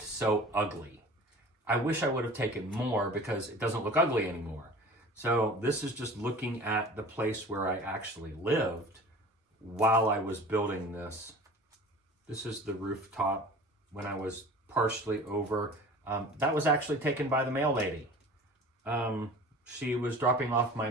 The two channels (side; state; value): both; normal; correlation 0.41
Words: so ugly. I wish I would have taken more because it doesn't look ugly anymore. So this is just looking at the place where I actually lived while I was building this. This is the rooftop when I was partially over. That was actually taken by the mail lady. She was dropping off my